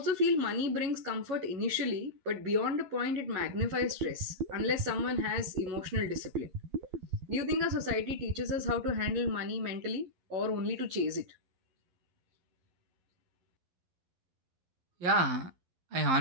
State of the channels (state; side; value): late; left; 11 ms